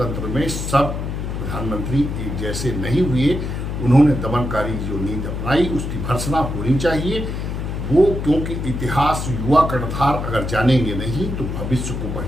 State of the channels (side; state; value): left; noise; hum, 4 dB below the sound